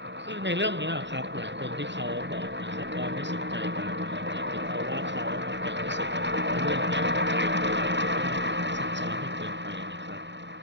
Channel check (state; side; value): late; left; 0.52 ms